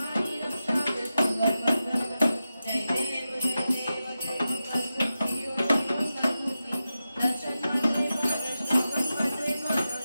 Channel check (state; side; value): inverted; both; correlation -0.92